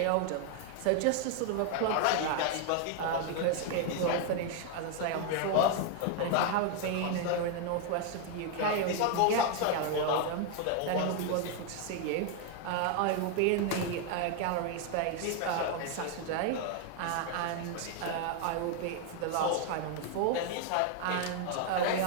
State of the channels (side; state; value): both; different; correlation 0.00